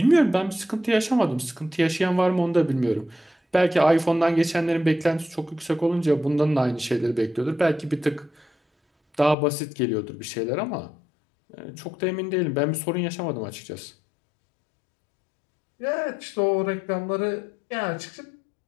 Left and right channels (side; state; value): right; drops out; at 9.3 s